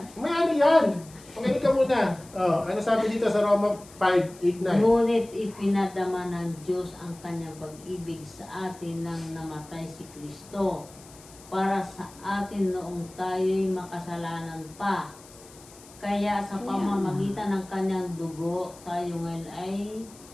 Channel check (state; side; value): noise; left; hiss, 22 dB below the sound